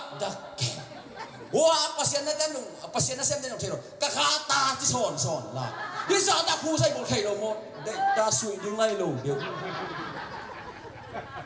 wah pasien na xem tên thầy rồi các ta chỉ sòn là bây giờ ta khu dây một thầy rồi một đây ta suy đứng ngay lù được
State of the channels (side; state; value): both; identical; correlation 1.00